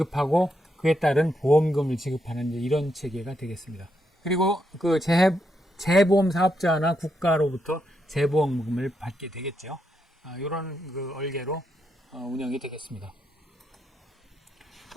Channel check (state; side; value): normal; both; correlation 0.81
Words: 그에 따른 보험금을 지급하는 이런 체계가 되겠습니다. 그리고 그 재보험 사업자나 국가로부터 재보험금을 받게 되겠죠. 이런 그 얼개로 운영이 되겠습니다.